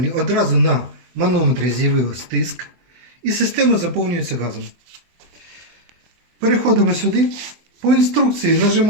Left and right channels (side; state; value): left; late; 24 ms